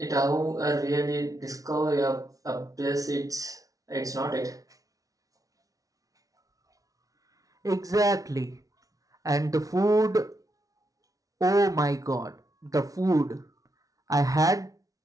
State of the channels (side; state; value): left; late; 0.17 ms